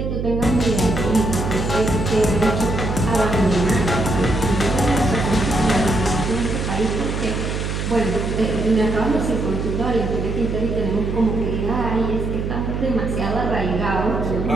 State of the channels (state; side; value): noise; right; hum, 3 dB below the sound